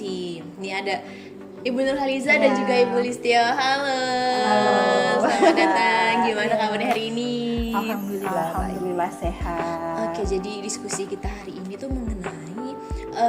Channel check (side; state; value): both; identical; correlation 1.00